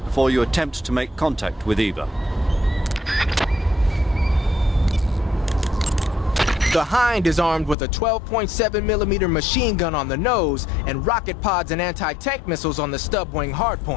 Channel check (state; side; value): drops out; right; at 7.8 s